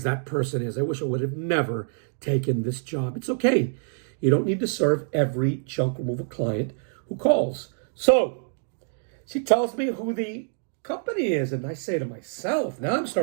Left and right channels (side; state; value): left; silent; digital silence